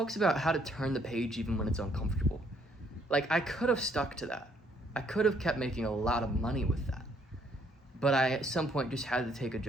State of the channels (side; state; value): both; normal; correlation 0.67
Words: about how to turn the page even when it's uncomfortable. Like, I could have stuck to that. I could have kept making a lot of money with that. But I, at some point, just had to take a